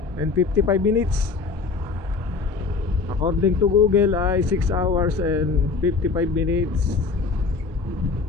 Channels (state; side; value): quieter; right; 4.5 dB